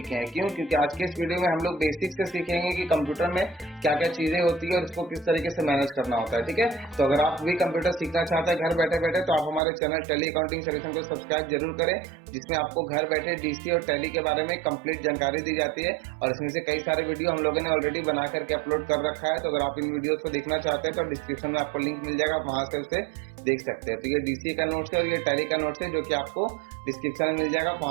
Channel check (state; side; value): drops out; left; at 9.6 s